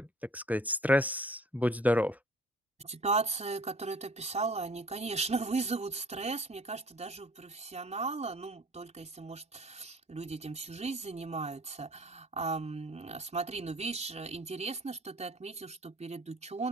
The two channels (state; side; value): normal; both; correlation 0.51